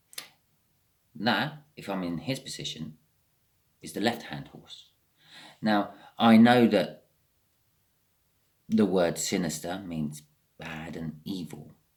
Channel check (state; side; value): identical; both; correlation 1.00